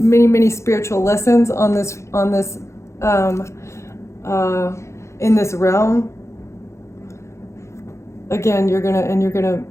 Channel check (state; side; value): late; right; 0.14 ms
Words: spiritual lessons on this in this realm. Again, you're gonna